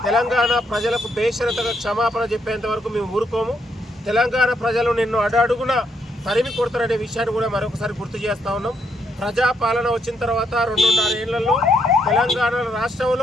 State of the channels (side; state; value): both; normal; correlation 0.75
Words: తెలంగాణ ప్రజలకు బేషరతుగా క్షమాపణ చెప్పేంత వరకు మేము ఊరుకోము. తెలంగాణ ప్రజలు నిన్ను అడుగున తరిమి కొడతారనే విషయాన్ని కూడా మరొకసారి గుర్తు చేస్తూ ఉన్నాం. ప్రజాపాలన వచ్చిన తర్వాత 2.5 ఏళ్లలో తెలంగాణ